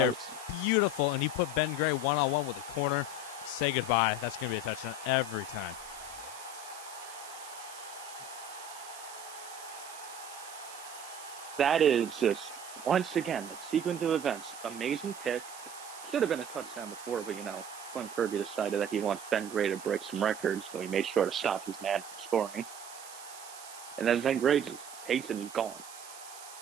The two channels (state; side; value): noise; right; hiss, 15 dB below the sound